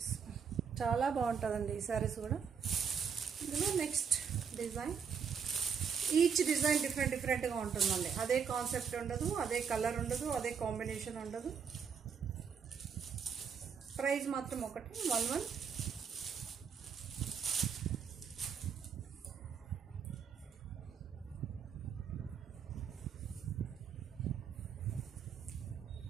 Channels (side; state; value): left; quieter; 6.7 dB